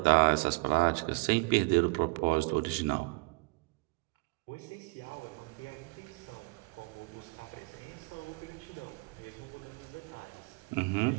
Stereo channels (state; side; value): quieter; left; 28.4 dB